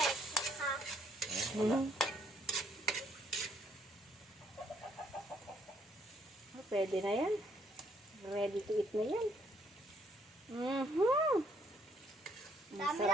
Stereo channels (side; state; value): both; normal; correlation 0.68